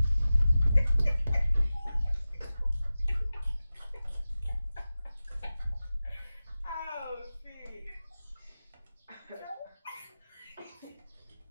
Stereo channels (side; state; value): both; inverted; correlation -0.95